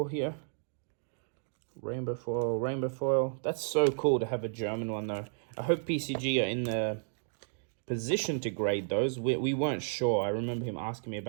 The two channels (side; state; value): left; silent; digital silence